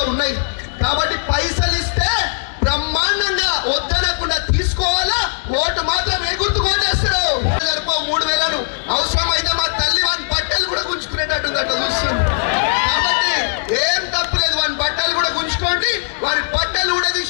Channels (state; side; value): silent; right; digital silence